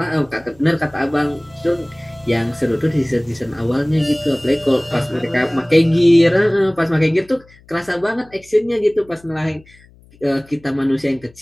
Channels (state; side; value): noise; left; hum, 27 dB below the sound